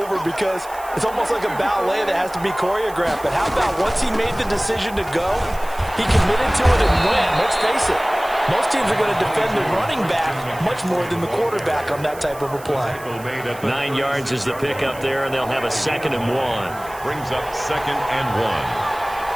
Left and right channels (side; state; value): right; noise; hiss, 19 dB below the sound